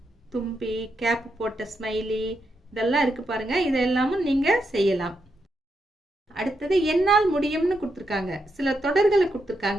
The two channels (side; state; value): both; normal; correlation 0.83